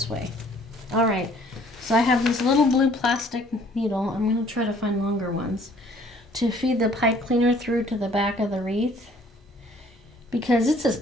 way. All right, so I have this little blue plastic needle. I'm going to try to find longer ones to feed the pipe cleaner through to the back of the wreath, because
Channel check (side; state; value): both; normal; correlation 0.58